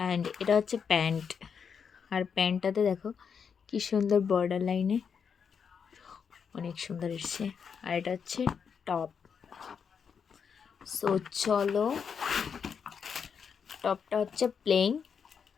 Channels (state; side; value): quieter; right; 6.6 dB